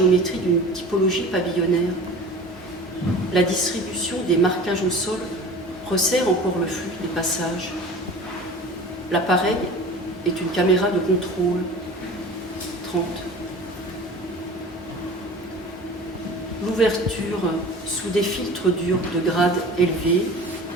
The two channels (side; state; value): both; normal; correlation 0.39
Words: d'une typologie pavillonnaire. La distribution des marquages au sol resserre encore le flux des passages. L'appareil est une caméra de contrôle. 30. L'ouverture sous des filtres durs de grade élevé